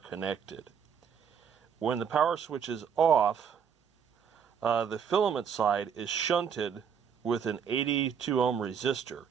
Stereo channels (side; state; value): left; quieter; 7.4 dB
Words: When the power switch is off, the filament side is shunted with an 82 ohm resistor.